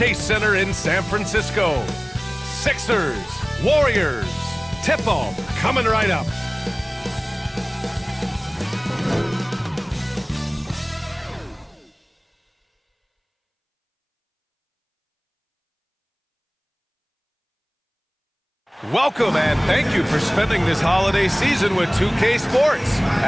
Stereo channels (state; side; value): identical; both; correlation 1.00